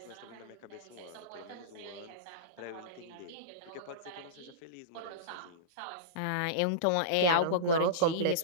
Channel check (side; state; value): both; different; correlation -0.06